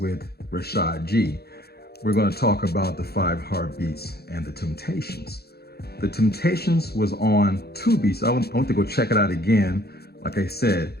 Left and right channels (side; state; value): right; late; 0.46 ms